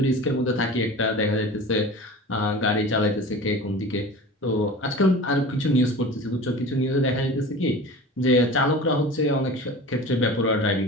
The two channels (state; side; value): normal; both; correlation 0.36